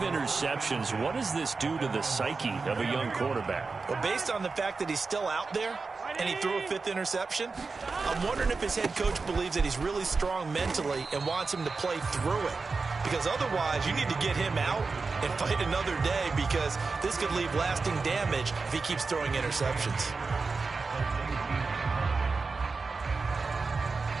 what does this do to the psyche of a young quarterback? Well, based on the fact that he's still out there and he threw a 5th interception, I'm wondering if his head coach believes that he's really strong mentally and wants him to play through it. Because otherwise, you need to get him out and fight another day, because this could leave lasting damage if he keeps throwing interceptions.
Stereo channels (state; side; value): quieter; left; 4.3 dB